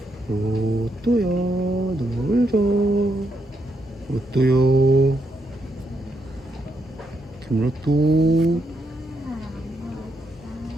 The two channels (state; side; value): normal; both; correlation 0.79